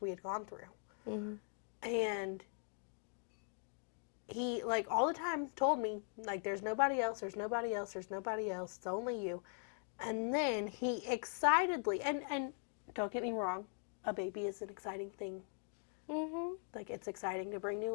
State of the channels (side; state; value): right; silent; 50 dB below the other